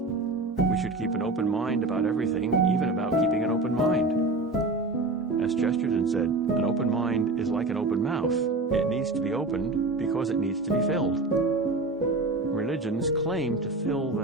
We should keep an open mind about everything, even about keeping an open mind. As Chesterton said, an open mind is like an open mouth. It needs to be opened because it needs to be filled. Religions claim to fill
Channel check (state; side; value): quieter; left; 3.1 dB